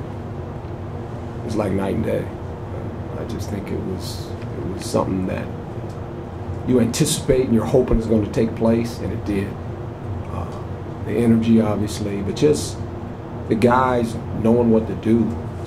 it's like night and day. I just think it was something that you anticipate and you're hoping is going to take place, and it did. The energy, obviously, but just the guys knowing what to do,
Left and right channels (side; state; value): both; identical; correlation 1.00